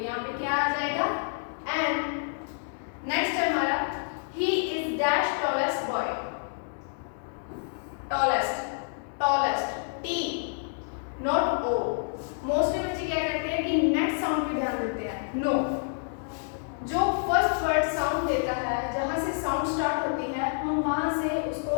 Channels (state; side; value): silent; right; digital silence